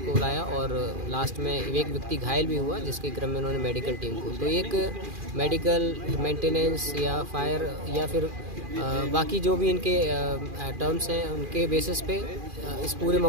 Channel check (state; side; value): late; left; 2.4 ms